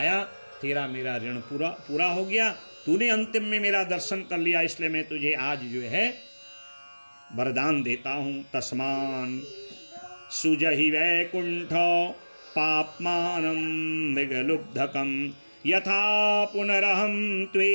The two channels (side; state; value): both; inverted; correlation -1.00